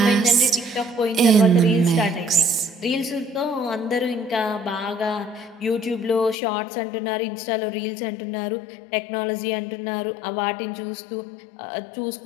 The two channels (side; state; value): right; drops out; at 6.4 s